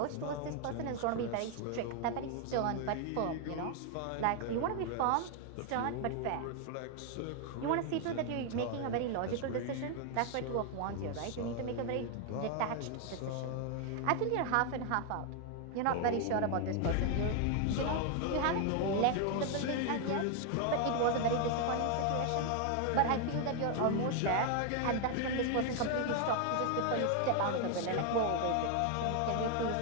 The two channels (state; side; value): different; both; correlation 0.01